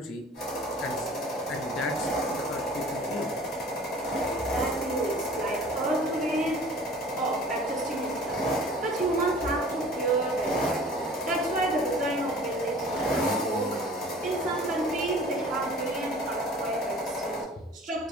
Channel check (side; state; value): both; normal; correlation 0.46